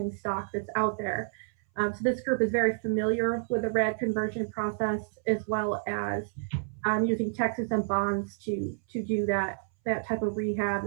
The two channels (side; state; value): left; silent; 58 dB below the other